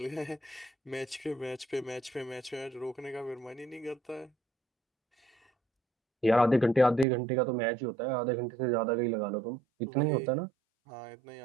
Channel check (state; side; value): drops out; left; at 7.1 s